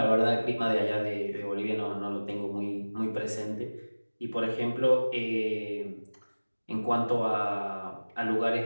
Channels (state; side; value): inverted; both; correlation -1.00